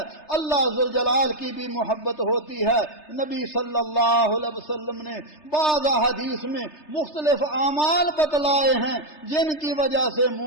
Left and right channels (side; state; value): right; late; 3.3 ms